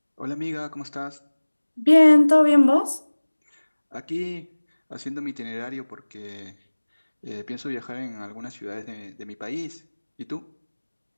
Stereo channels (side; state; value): both; inverted; correlation -1.00